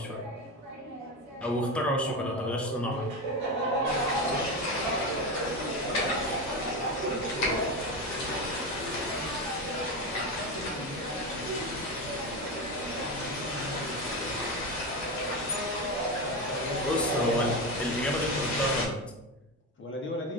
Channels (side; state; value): both; normal; correlation 0.18